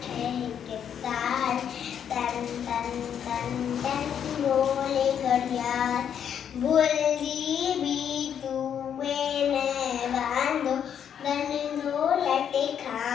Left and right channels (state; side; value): quieter; right; 8.6 dB